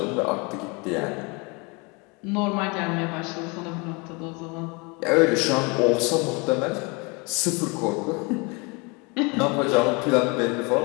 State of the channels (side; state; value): right; quieter; 29.4 dB